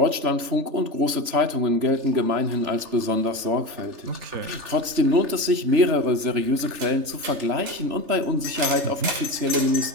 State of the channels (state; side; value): late; left; 3.3 ms